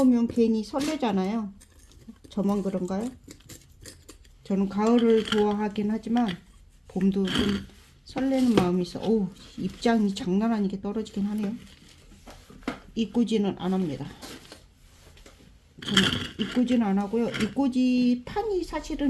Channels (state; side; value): identical; both; correlation 1.00